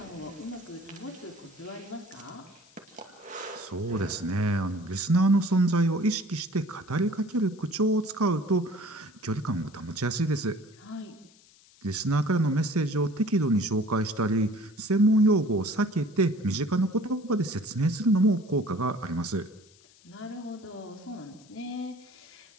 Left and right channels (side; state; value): left; noise; hiss, 28 dB below the sound